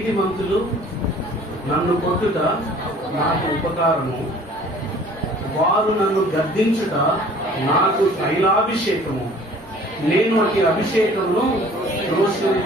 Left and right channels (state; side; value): normal; both; correlation 0.51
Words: నన్ను కొట్టుట నాకు ఉపకారము, వారు నన్ను గద్దించుట నాకు తైలాభిషేకము, నేను అట్టి అభిషేకమును